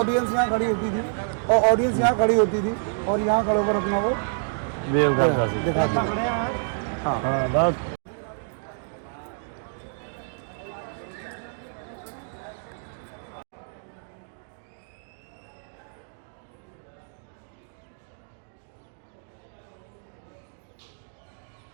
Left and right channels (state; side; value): silent; left; digital silence